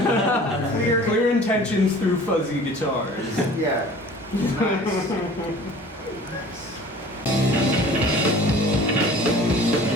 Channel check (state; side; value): normal; both; correlation 0.45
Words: clear, Clear intentions through fuzzy guitars. Yeah. Nice. Nice.